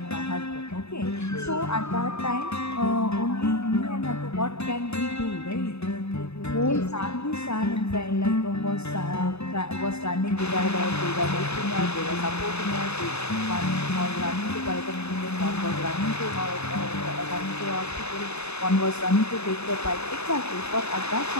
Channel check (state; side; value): late; right; 0.80 ms